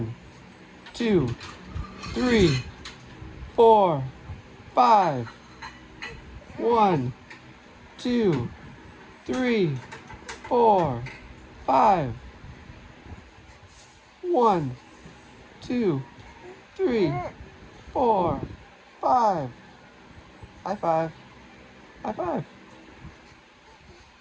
2, 3, 4, 5. 1, 2, 3, 4, 5. 1, 2, 3, 4, 5. High five. High five.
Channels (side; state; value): both; identical; correlation 1.00